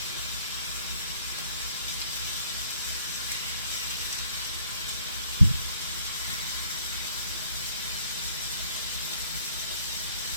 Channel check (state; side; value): inverted; both; correlation -0.61